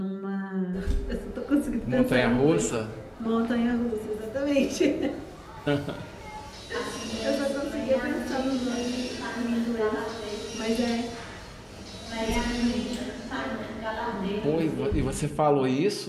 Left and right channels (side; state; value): both; identical; correlation 1.00